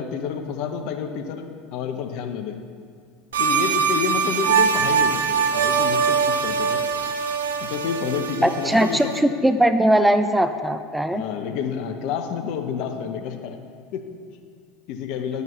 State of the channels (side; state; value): both; normal; correlation 0.31